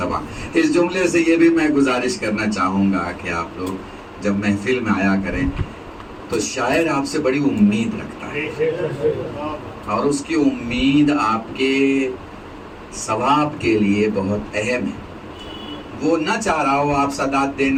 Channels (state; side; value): identical; both; correlation 1.00